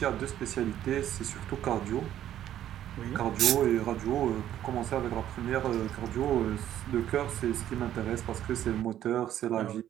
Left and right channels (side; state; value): left; quieter; 11.6 dB